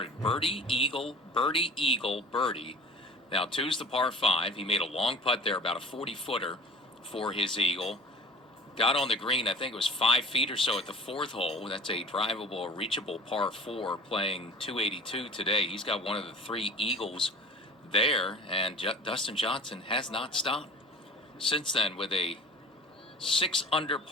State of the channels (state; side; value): normal; both; correlation 0.43